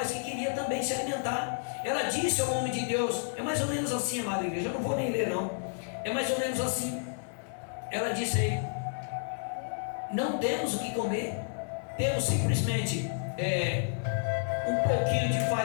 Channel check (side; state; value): right; silent; 57 dB below the other